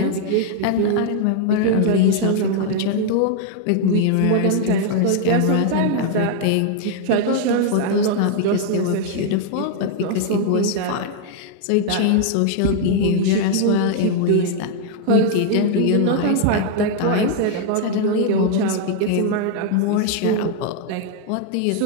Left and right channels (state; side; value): different; both; correlation -0.01